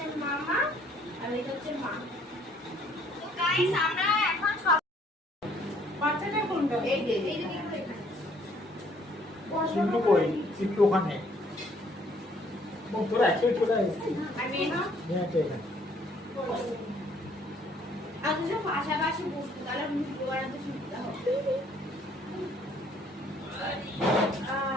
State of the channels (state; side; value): normal; both; correlation 0.62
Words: মামা, আর এটা হচ্ছে মা। তো গাইস আমরা এখন সব বাচ্চাটা কোনটা এই যে এই যে দেখো এখানে। চিন্টু কই? চিন্টু ওখানে। ও তোরা একসাথে চলে আয়। আর মেয়ে না, হ্যাঁ, তো এখানে। আর দুজন পাশাপাশি বসতো, তাহলে ভিডিও বানাতে সুবিধা হবে।